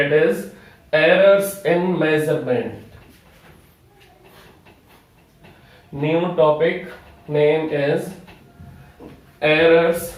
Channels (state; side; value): identical; both; correlation 1.00